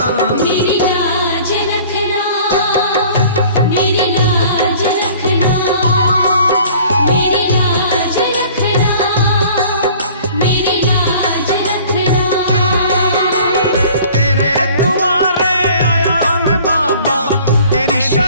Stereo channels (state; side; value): inverted; both; correlation -0.50